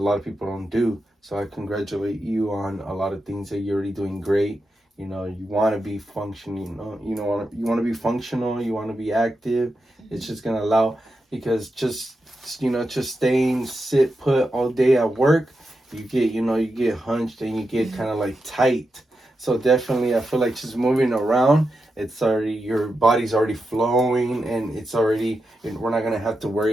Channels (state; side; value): normal; both; correlation 0.88